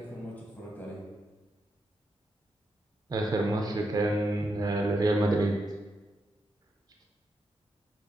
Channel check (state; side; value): normal; both; correlation 0.83